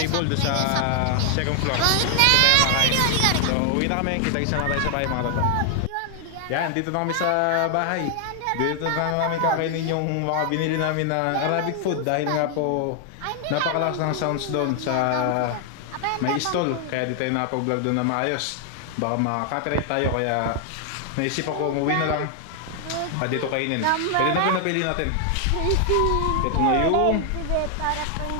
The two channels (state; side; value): different; both; correlation 0.00